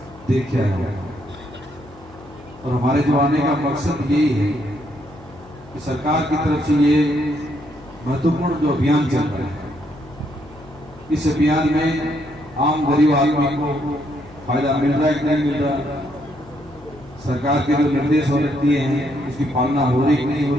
देख के आया हूँ और हमारे जो आने का मकसद यही है कि सरकार की तरफ से ये महत्वपूर्ण जो अभियान चल रहा है, इस अभियान में आम गरीब आदमी को फायदा मिल रहा है कि नहीं मिल रहा, सरकार के जो निर्देश और दिए हैं उसकी पालना हो रही कि नहीं हो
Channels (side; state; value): left; noise; hum, 22 dB below the sound